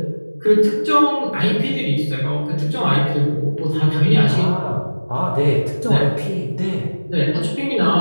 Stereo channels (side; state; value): both; inverted; correlation -1.00